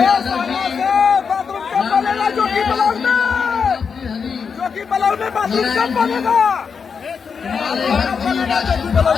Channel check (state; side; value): quieter; right; 6.0 dB